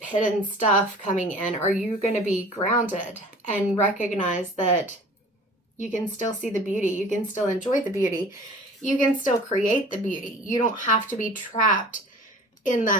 stuff coming in? Are you going to be grounded and recognize that you can still see the beauty, you can still enjoy the beauty, you can still create the beauty? You don't have to be trapped in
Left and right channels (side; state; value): both; normal; correlation 0.44